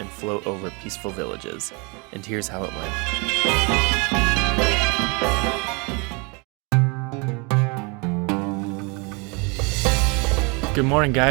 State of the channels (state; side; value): quieter; left; 30.4 dB